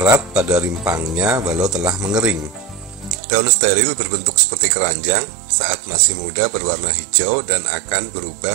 pada rimpangnya walau telah mengering. Daun steril berbentuk seperti keranjang, saat masih muda berwarna hijau dan akan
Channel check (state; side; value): drops out; left; at 3.2 s